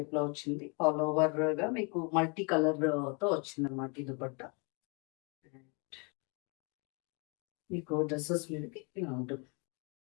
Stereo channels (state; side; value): quieter; right; 34.1 dB